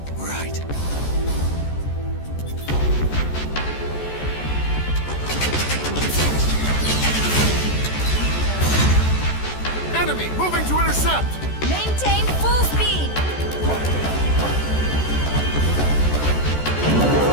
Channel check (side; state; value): right; late; 14 ms